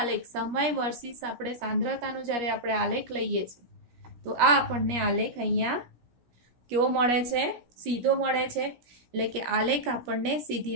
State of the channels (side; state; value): left; late; 17 ms